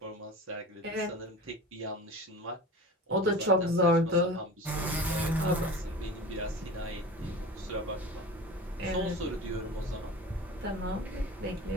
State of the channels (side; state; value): both; normal; correlation 0.35